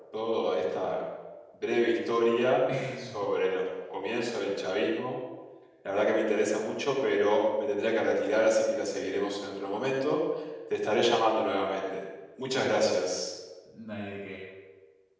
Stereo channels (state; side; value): identical; both; correlation 1.00